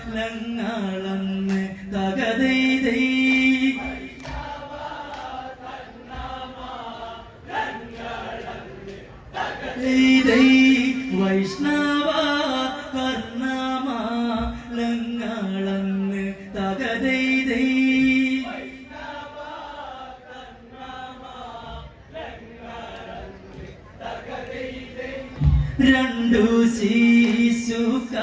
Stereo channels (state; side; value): identical; both; correlation 1.00